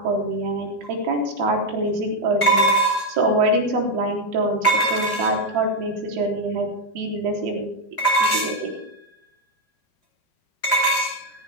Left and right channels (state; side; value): late; right; 4.7 ms